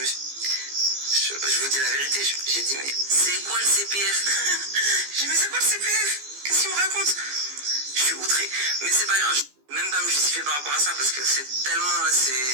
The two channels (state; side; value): late; left; 15 ms